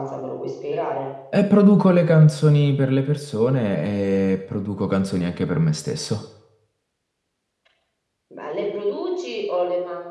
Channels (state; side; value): identical; both; correlation 1.00